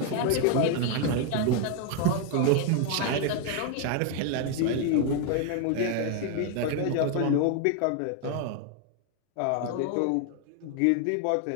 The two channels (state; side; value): different; both; correlation 0.01